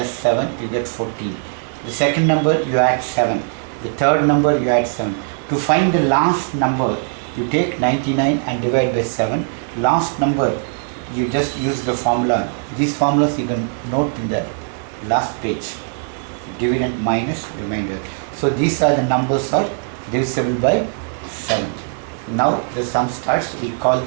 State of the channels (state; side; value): silent; left; 66 dB below the other